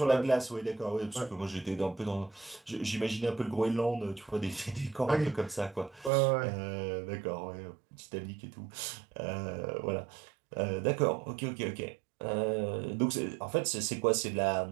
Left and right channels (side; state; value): left; drops out; at 6.1 s